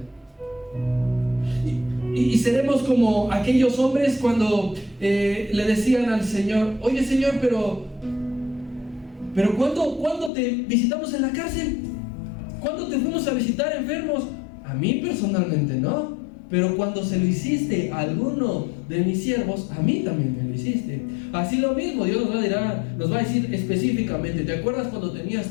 Y seremos como aquellos hombres cuando le decían al Señor: oye Señor, pero ¿cuándo te visitamos en la cárcel? ¿Cuándo te fuimos a visitar enfermos? A mí personalmente no, pero cuando se lo hiciste a alguno de mis siervos, a mí también me lo hiciste. Así lo mismo, Dios nos va a decir específicamente: ¿te acuerdas cuando tenías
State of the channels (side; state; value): right; drops out; at 10.3 s